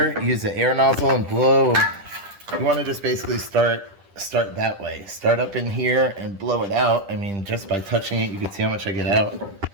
use the air nozzle and blow. You want to just basically start that way. Start up in here and blow it out. I mean, just by touching it, you can see how much I get out.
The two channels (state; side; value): late; left; 10 ms